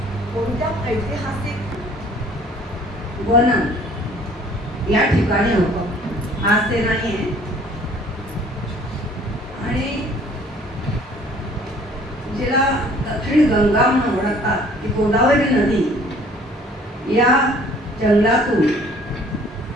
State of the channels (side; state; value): both; normal; correlation 0.55